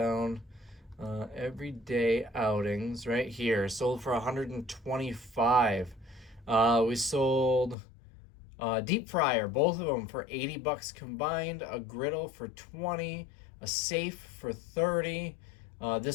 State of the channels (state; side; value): drops out; right; at 7.8 s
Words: Everyday outings right here. Sold for 125. We sold deep fryer, both of them for 80 bucks combined. A griddle for 20. A safe for 30.